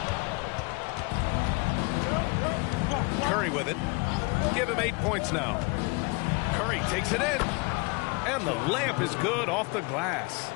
Curry with it. Give him 8 points now. Curry takes it in. And the layup is good off the glass.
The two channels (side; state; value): right; quieter; 29.3 dB